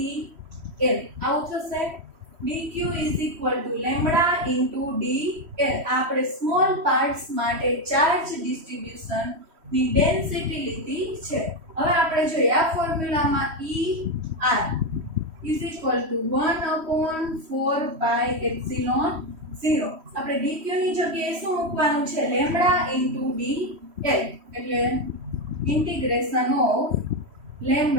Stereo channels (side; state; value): left; late; 3.1 ms